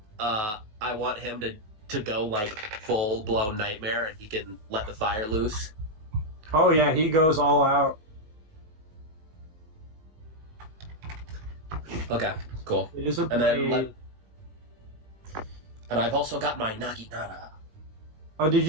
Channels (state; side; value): late; left; 19 ms